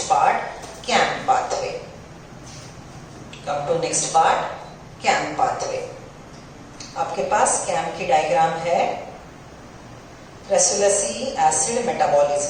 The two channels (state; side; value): identical; both; correlation 1.00